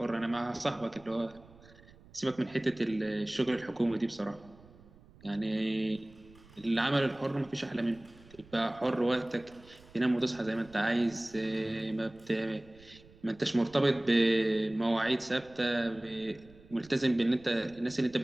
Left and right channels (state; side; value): noise; right; rumble, 24 dB below the sound